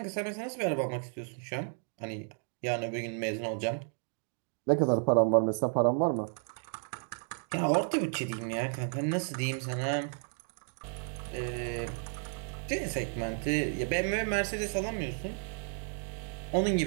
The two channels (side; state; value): left; silent; 56 dB below the other